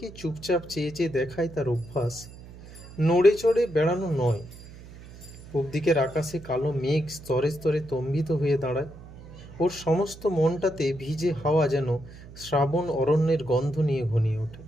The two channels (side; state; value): right; noise; hum, 17 dB below the sound